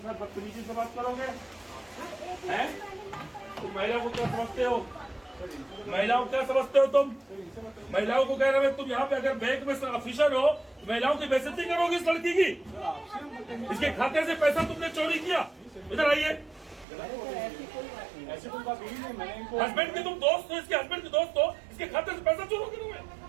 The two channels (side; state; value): left; drops out; at 16.9 s